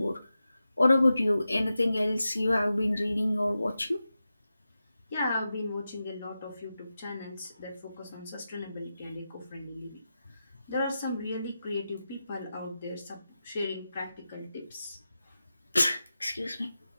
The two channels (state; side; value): inverted; both; correlation -0.92